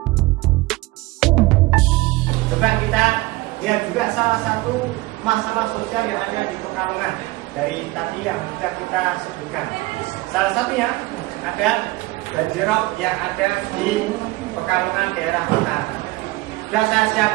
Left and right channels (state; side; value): quieter; left; 20.7 dB